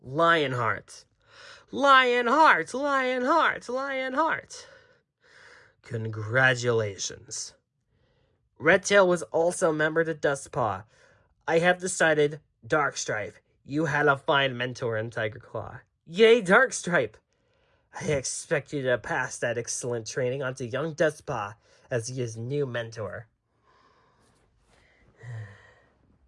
Lionheart, Lionheart, Lionheart. Congratulations. Redtail was also a member to Dustpaw. I have decided, Darkstripe, you had a fine mentor in Tiger Claw. Yay, Darkstripe! I expect you to pass that excellent training onto young Dustpaw as his new mentor.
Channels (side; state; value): both; identical; correlation 1.00